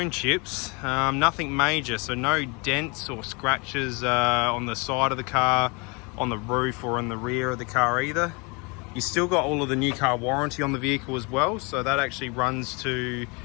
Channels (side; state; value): right; quieter; 29.9 dB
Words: chips, nothing major, so no dents or scratches on the side of the car, on the roof or on the rear of the car either. You still got all of the new car warranty on the vehicle as well, so that actually runs to,